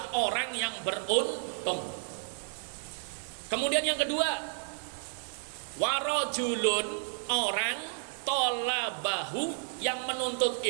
orang yang beruntung. Kemudian yang kedua, warajulun, orang tolabahu, yang menuntut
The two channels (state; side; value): silent; left; 55 dB below the other